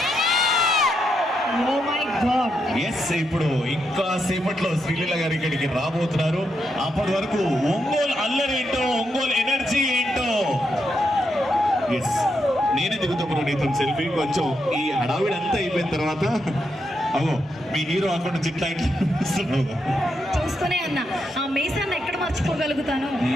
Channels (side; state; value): both; normal; correlation 0.82